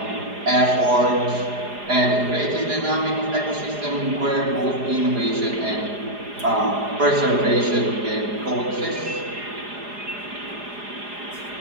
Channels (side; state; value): left; late; 4.9 ms